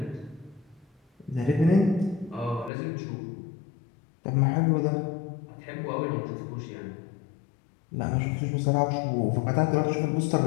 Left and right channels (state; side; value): drops out; right; at 2.7 s